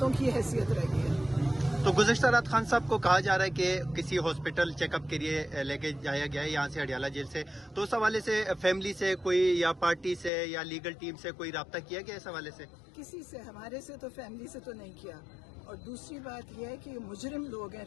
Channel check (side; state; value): right; drops out; at 10.3 s